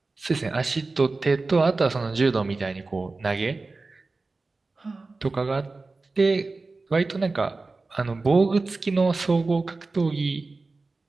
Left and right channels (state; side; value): quieter; left; 3.6 dB